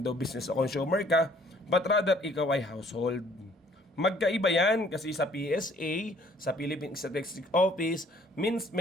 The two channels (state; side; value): normal; both; correlation 0.59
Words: business o consumer ka, but rather, ikaw ay household. Magkaiba yan kasi sa PSA, sa Philippine Statistics Office, means